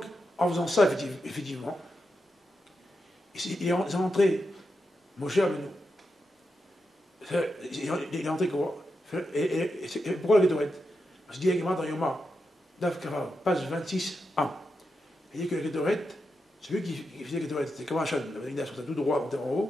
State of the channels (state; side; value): normal; both; correlation 0.87